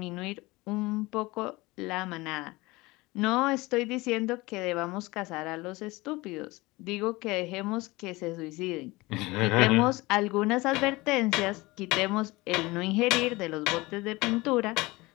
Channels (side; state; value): right; quieter; 21.8 dB